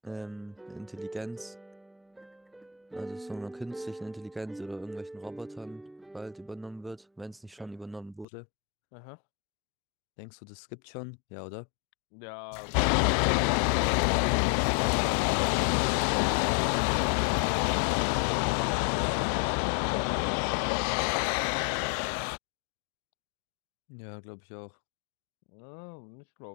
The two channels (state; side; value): drops out; right; at 8.2 s